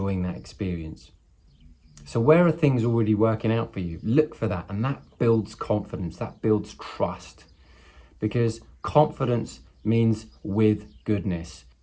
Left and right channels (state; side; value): identical; both; correlation 1.00